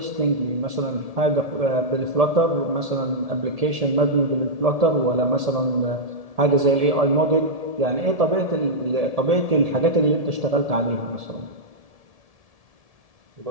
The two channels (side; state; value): left; late; 1.7 ms